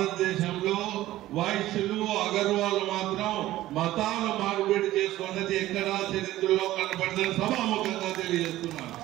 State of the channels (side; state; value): left; quieter; 15.3 dB